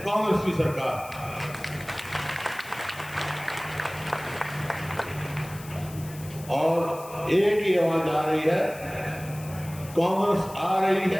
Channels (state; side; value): noise; left; hiss, 17 dB below the sound